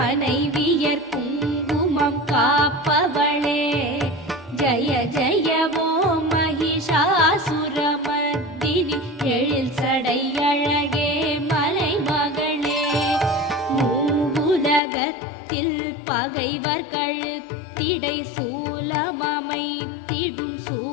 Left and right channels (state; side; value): drops out; right; at 14.8 s